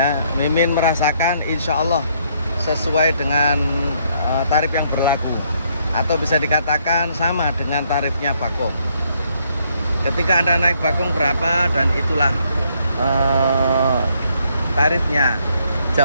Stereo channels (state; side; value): inverted; both; correlation -0.70